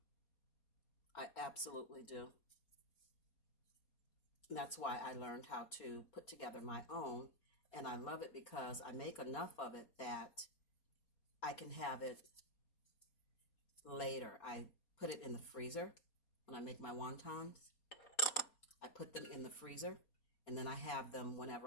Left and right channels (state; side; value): late; right; 4.2 ms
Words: I absolutely do. And that's why I learned how to put together my own. And I love it because I make enough of it that I can have it later. I put it in the freezer when I make my wontons. I put them in the freezer, and then I have them